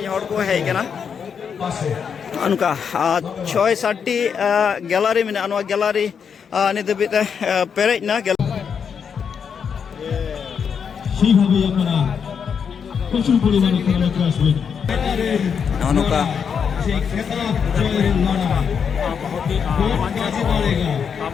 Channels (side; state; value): right; quieter; 6.9 dB